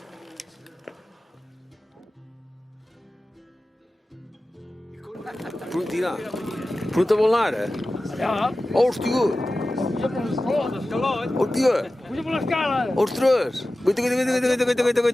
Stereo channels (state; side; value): normal; both; correlation 0.95